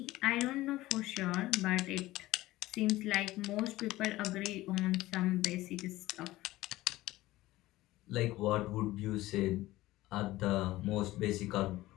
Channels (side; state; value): right; quieter; 17.4 dB